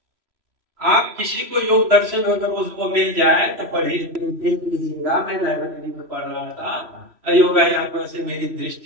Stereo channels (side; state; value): left; late; 3.0 ms